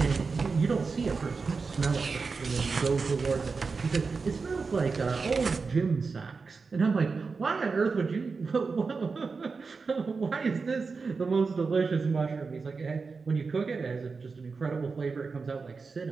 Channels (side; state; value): left; quieter; 4.6 dB